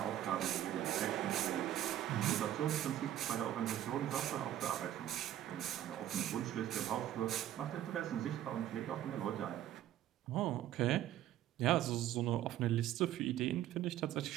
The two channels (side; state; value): left; quieter; 12.1 dB